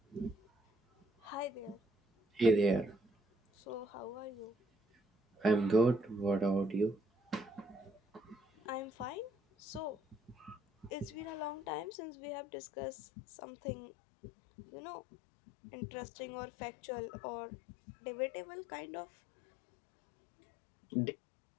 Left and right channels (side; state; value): right; drops out; at 11.9 s